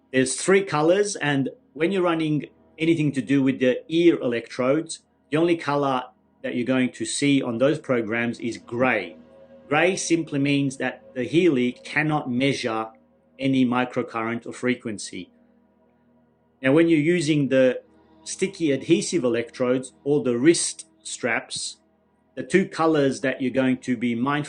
There's 3 colors, and when you're running anything to do with the ear electrodes, the only color that you're going to see on those programs is gray. Gray simply means that the Healy cannot measure any microcurrent or frequency. Now, when you're using the sticky adhesive electrodes or the wrist straps, the 2 colors that you're going to be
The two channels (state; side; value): identical; both; correlation 1.00